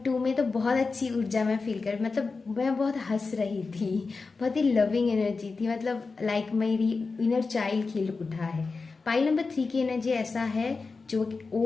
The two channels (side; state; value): right; quieter; 4.2 dB